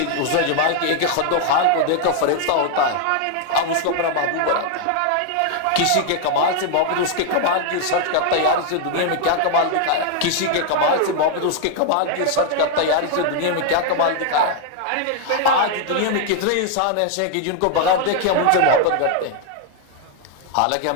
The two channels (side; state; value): both; different; correlation 0.00